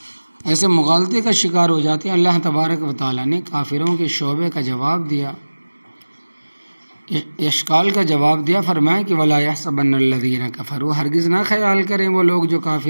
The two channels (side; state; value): both; inverted; correlation -1.00